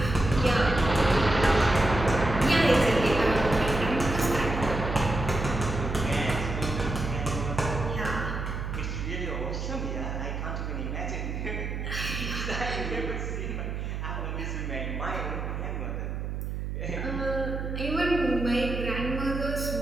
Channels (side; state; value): right; noise; hum, 4 dB below the sound